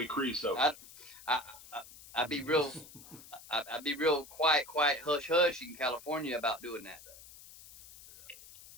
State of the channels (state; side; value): noise; left; hiss, 19 dB below the sound